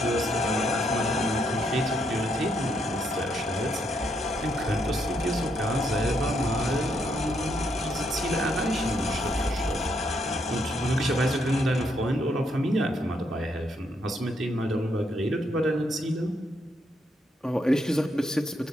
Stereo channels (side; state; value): both; normal; correlation 0.76